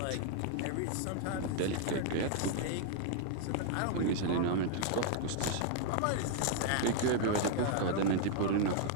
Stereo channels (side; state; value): both; different; correlation 0.00